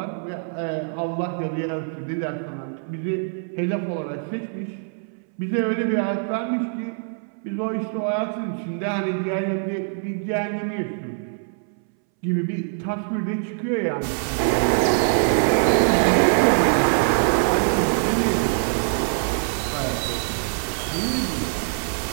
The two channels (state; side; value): silent; left; 62 dB below the other